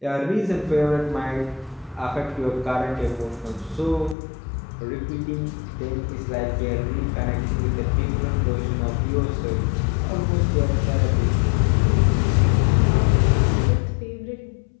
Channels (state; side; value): drops out; right; at 4.2 s